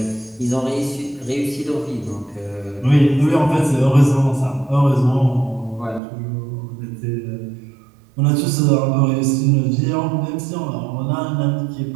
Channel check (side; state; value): left; drops out; at 6.0 s